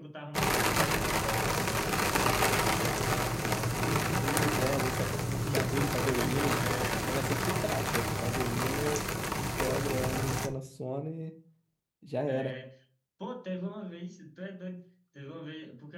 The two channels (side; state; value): both; identical; correlation 1.00